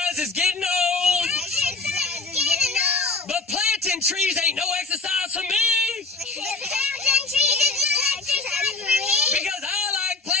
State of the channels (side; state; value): right; quieter; 3.6 dB